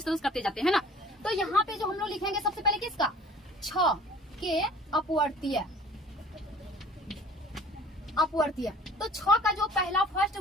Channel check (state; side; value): normal; both; correlation 0.49